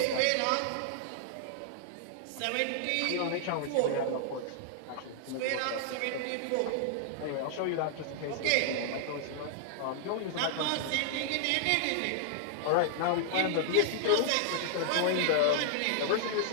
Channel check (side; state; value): both; different; correlation -0.01